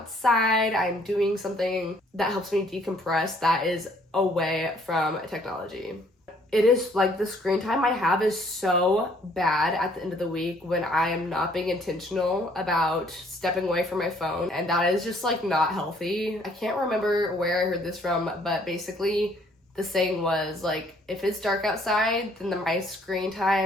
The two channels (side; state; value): both; normal; correlation 0.62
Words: I'm doing something that helps me decompress that is away from technology. It is like the screen time I have is so bad at the end of the week when I am not being intentional about stepping away from my phone, and that is just like not healthy. I can't remember where I heard this from, but basically the saying was like, if it's dark outside, then my screen